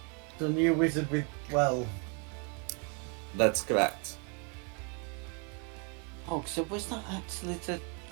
The new wizard with 12. That's correct. Oh, so was that actually the...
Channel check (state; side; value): quieter; left; 34.7 dB